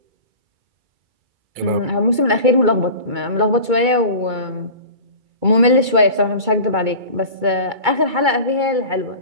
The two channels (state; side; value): late; left; 2.3 ms